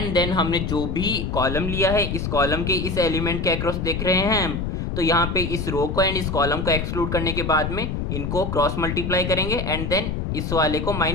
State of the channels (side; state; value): left; noise; rumble, 2 dB below the sound